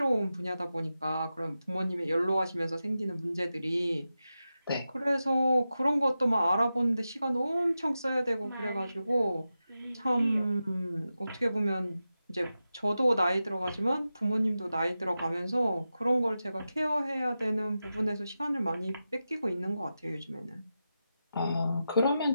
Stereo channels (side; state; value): both; inverted; correlation -0.91